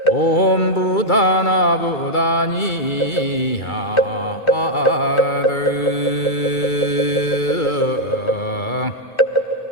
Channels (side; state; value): right; late; 2.3 ms